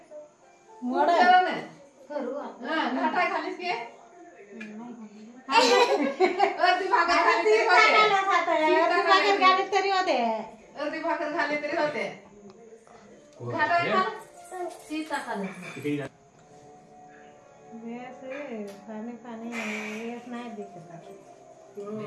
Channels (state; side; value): identical; both; correlation 1.00